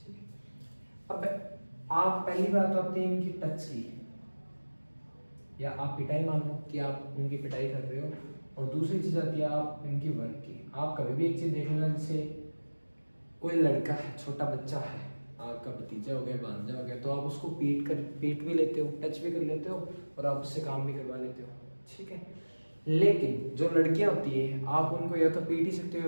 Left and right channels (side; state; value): both; inverted; correlation -1.00